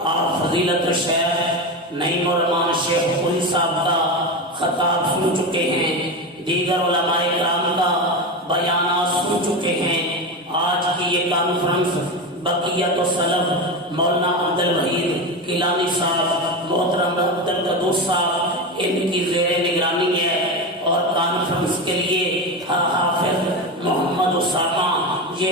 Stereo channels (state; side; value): normal; both; correlation 0.19